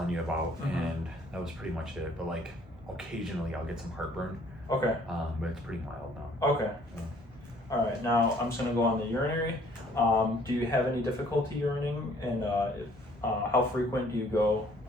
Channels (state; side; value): normal; both; correlation 0.59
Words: you about, Mhm. and that was pretty much it. But like occasionally I'll get some heartburn, Okay. but it's pretty mild now. Okay. Yeah. All right. Now I'm just gonna go on the urinary. Do you have any difficulty urinating, and how frequent do you go